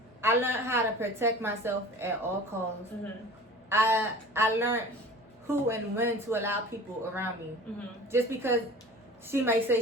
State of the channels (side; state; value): both; normal; correlation 0.41